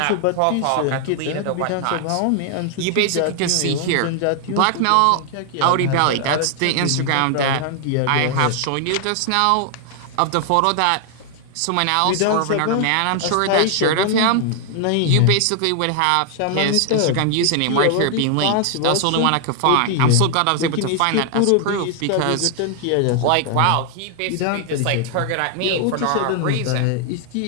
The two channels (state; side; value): different; both; correlation 0.00